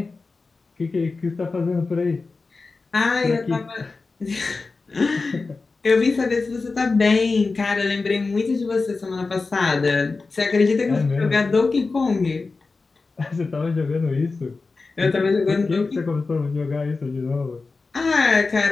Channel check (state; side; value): quieter; right; 4.0 dB